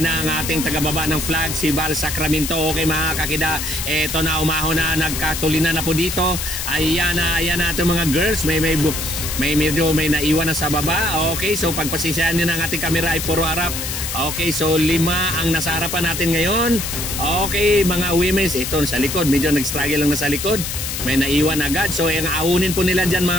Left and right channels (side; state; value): left; noise; hiss, 4 dB below the sound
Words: na ang ating tagababa ng flag, si Val Sacramento. Okay mga kakida, eto na, umahon na, nagkatulinan na po dito. Ayan na itong mga girls, may medyo may naiwan na sa baba. Okay, so pagpasisyahan nyo ng ating kamera ay puro harap. Okay, so 5 ang nasa harapan natin ngayon. Okay, mga women's, ito sa likod, medyo nag-struggle lang na sa likod, may naiwan agad. So yung aunin po nila dyan